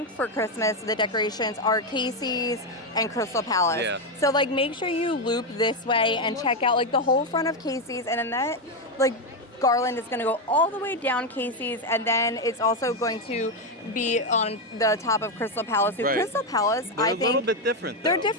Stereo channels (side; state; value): both; normal; correlation 0.07